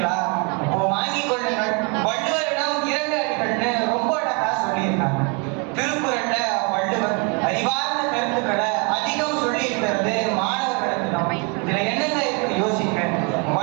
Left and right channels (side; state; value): left; quieter; 33.5 dB